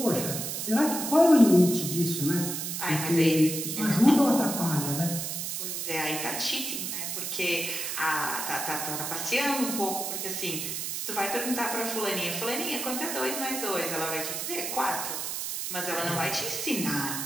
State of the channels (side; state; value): right; noise; hiss, 3 dB below the sound